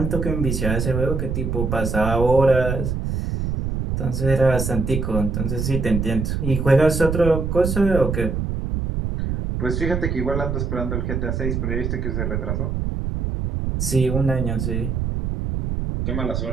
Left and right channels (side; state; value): right; noise; rumble, 2 dB below the sound